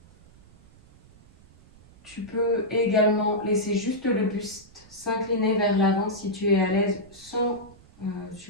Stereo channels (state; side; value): noise; right; rumble, 26 dB below the sound